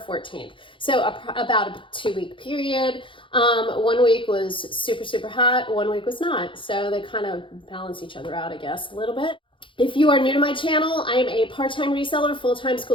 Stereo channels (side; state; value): right; late; 0.25 ms